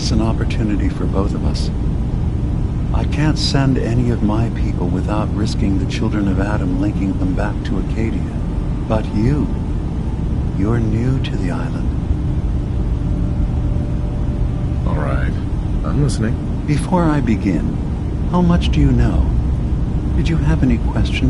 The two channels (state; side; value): identical; both; correlation 1.00